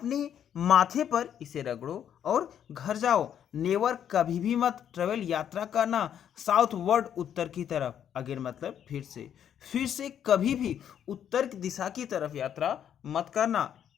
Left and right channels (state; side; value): quieter; right; 9.4 dB